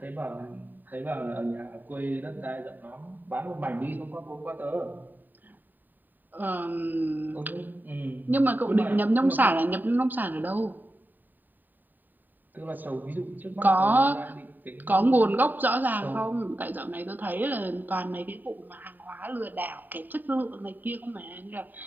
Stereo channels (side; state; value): left; late; 0.089 ms